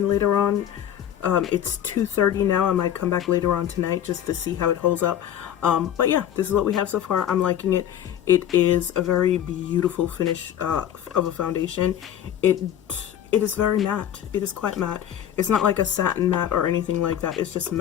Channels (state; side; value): quieter; right; 10.3 dB